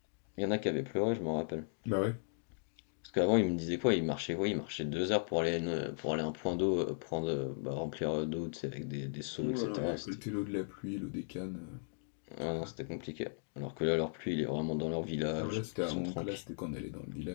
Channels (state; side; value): silent; right; digital silence